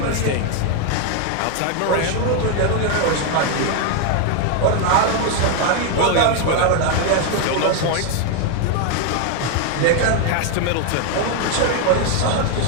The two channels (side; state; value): both; different; correlation 0.01